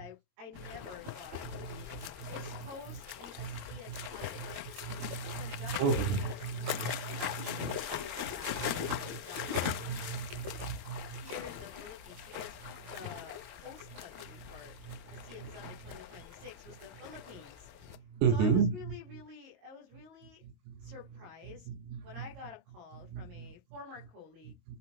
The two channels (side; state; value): left; late; 22 ms